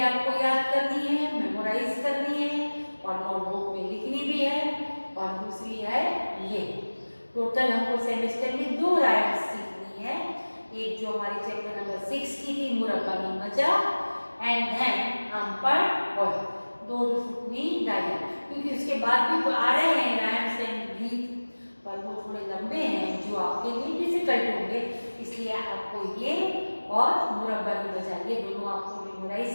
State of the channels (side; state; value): both; inverted; correlation -1.00